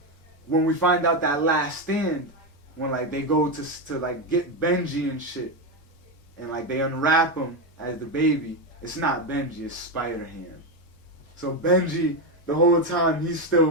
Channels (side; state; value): both; normal; correlation 0.09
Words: when we find out that last stand, when like they go to like get Benji and shit, and like they unwrap him as the baby, it's not Benji, it's Spider-Ham. So Benji, the whole time, he still